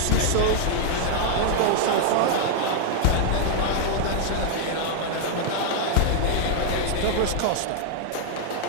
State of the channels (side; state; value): both; different; correlation 0.00